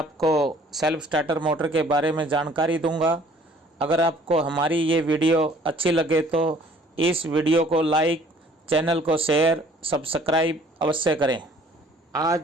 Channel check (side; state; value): both; normal; correlation 0.55